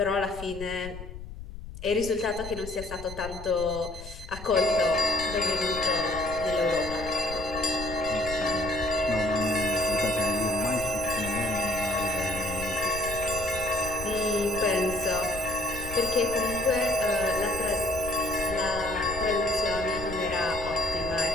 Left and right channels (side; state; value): left; noise; rumble, 12 dB below the sound